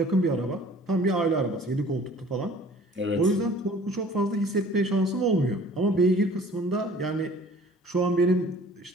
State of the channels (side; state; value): both; normal; correlation 0.50